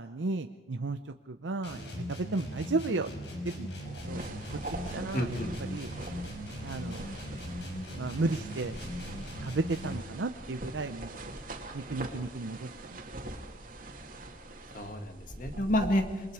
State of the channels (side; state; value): both; normal; correlation 0.56